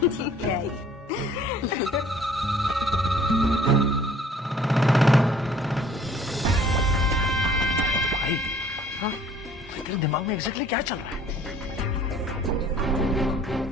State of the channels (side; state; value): both; normal; correlation 0.55